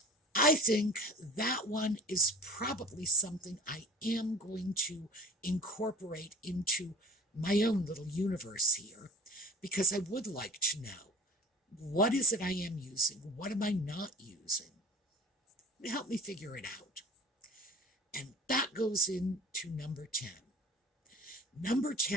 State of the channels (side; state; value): both; normal; correlation 0.41